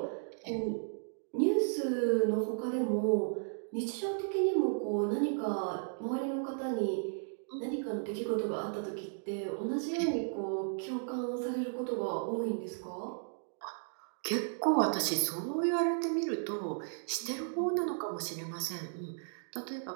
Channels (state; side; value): silent; left; digital silence